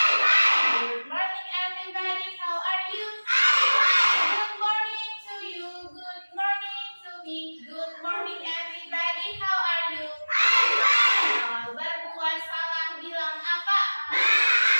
morning everybody, how are you? Good morning to you, good morning to me. Good morning everybody, how are you? Kalau berbuat salah bilang apa?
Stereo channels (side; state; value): both; inverted; correlation -1.00